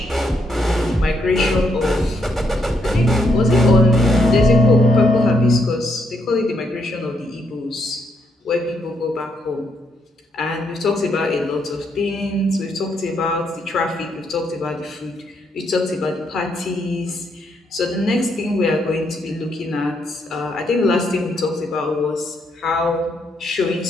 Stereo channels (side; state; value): both; normal; correlation 0.76